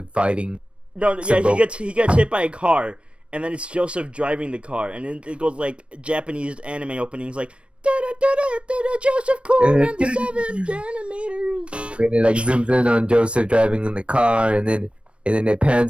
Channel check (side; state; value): left; late; 0.059 ms